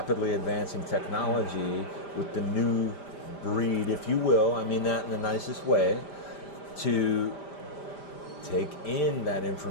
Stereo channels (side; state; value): right; late; 5.0 ms